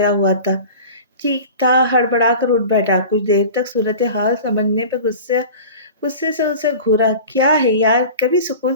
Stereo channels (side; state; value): both; inverted; correlation -0.37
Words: ہوا تھا ٹھیک تھا ہڑبڑا کر اٹھ بیٹھا۔ کچھ دیر تک صورتحال سمجھنے پہ غصے سے اسے گھورا۔ کیا ہے یار، کبھی